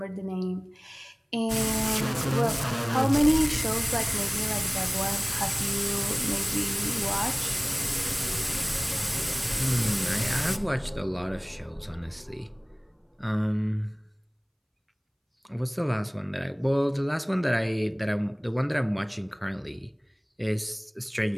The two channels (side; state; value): both; identical; correlation 1.00